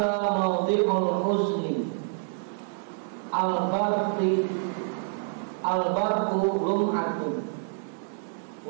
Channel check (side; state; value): left; silent; 60 dB below the other